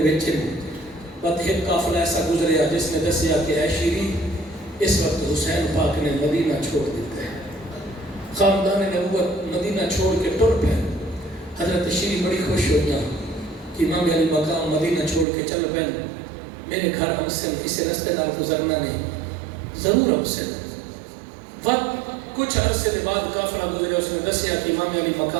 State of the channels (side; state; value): left; drops out; at 15.2 s